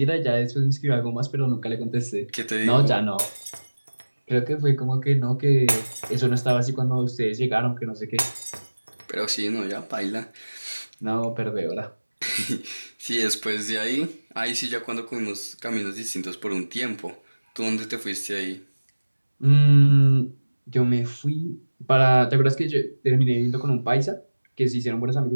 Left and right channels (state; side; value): inverted; both; correlation -1.00